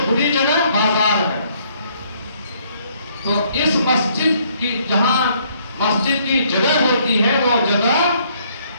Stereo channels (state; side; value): inverted; both; correlation -0.66